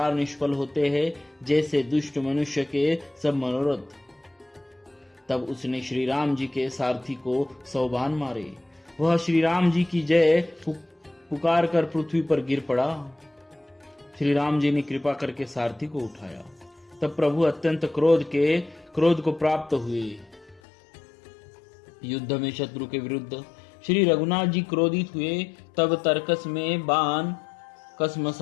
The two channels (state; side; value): drops out; right; at 20.6 s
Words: निष्फल होते हैं, जैसे दुष्ट मनुष्य के सब मनोरथ। तब उसने श्री राम जी के सारथी को 100 बाण मारे। वह श्री राम जी की जय पुकार कर पृथ्वी पर गिर पड़ा। श्री राम जी ने कृपा करके सारथी को उठाया। तब प्रभु अत्यंत क्रोध को प्राप्त हुए। युद्ध में शत्रु के विरुद्ध श्री रघुनाथ जी क्रोधित हुए। तब तर्कस में बाण